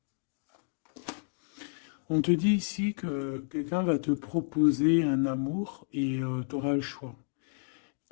On te dit ici que quelqu'un va te proposer un amour et tu auras le choix.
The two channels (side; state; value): right; silent; digital silence